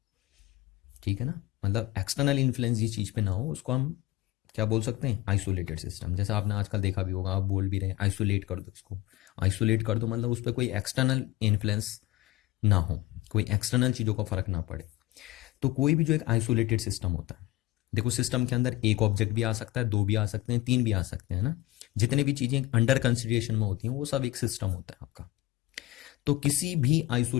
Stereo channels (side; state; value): right; quieter; 17.5 dB